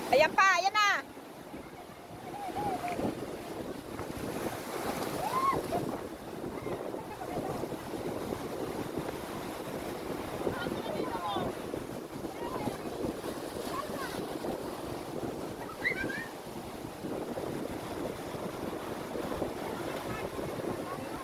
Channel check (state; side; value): identical; both; correlation 1.00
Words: Ayan pa, ayan na.